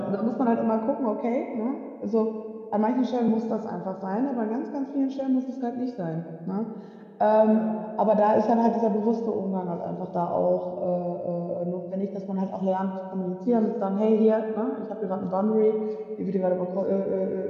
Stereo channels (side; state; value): both; identical; correlation 1.00